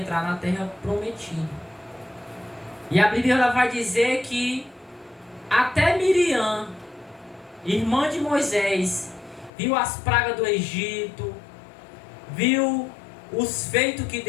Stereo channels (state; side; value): drops out; right; at 9.5 s